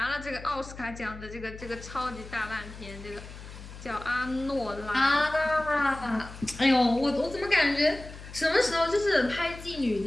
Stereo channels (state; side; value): noise; left; hum, 14 dB below the sound